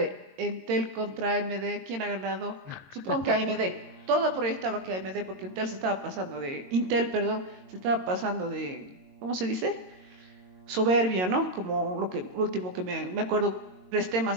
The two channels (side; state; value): left; late; 22 ms